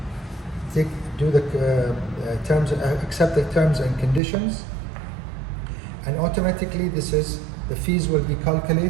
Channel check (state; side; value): drops out; left; at 4.2 s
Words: do the accept the terms and conditions, and automatically the fees will be